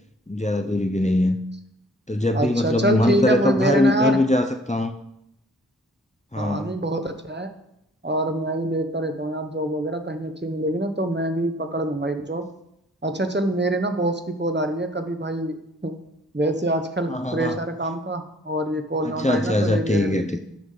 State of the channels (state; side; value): normal; both; correlation 0.57